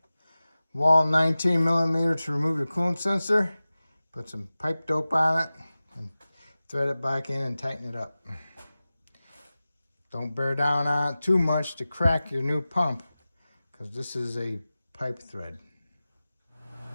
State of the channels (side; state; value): both; inverted; correlation -0.96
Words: wall 19 millimeter to remove your coolant sensor. Put some pipe dope on it and thread it back in and tighten it up. Don't bear down on it too much to crack your new pump, because this is a pipe thread.